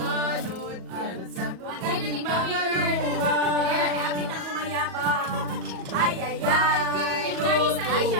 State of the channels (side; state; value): left; late; 37 ms